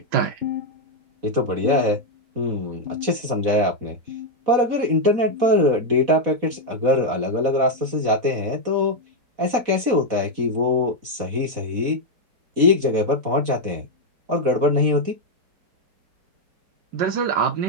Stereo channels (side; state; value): left; late; 4.1 ms